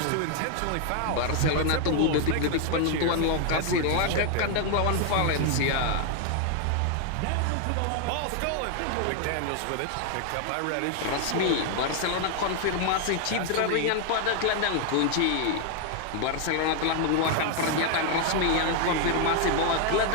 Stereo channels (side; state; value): both; different; correlation 0.00